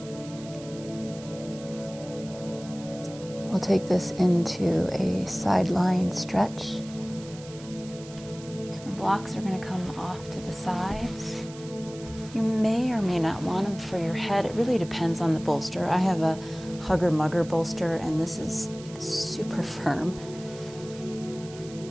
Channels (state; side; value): noise; right; hiss, 18 dB below the sound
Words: We'll take this into a sideline stretch. So the blocks are going to come off to the sides. You may or may not want them for your head. It really depends on the bolster. I have a Hugger Mugger bolster, and this is like super firm.